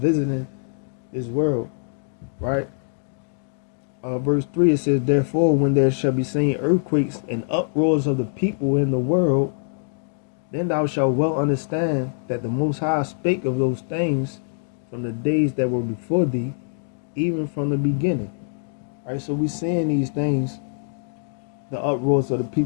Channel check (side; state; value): right; silent; digital silence